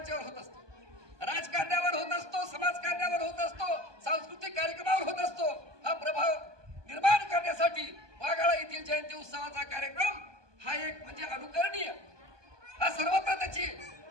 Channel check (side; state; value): left; late; 1.2 ms